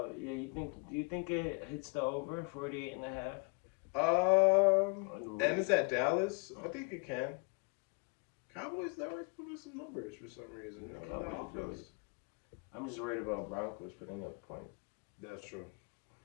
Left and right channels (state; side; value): quieter; right; 32.6 dB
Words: you think it hits the over 48.5? And it's at Dallas. I think it can. Cowboys never put in some numbers for some reason. I'm just worried about Broncos putting up points. That's true.